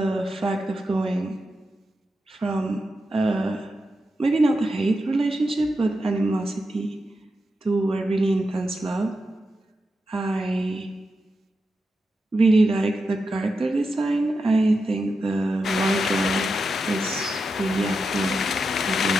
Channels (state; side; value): normal; both; correlation 0.88